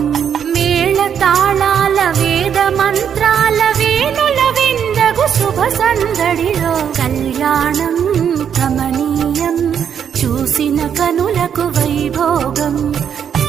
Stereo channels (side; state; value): left; quieter; 8.2 dB